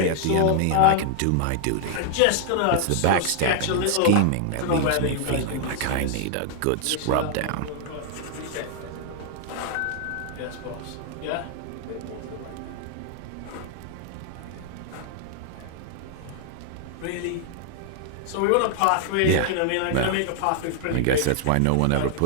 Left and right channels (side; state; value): both; different; correlation 0.00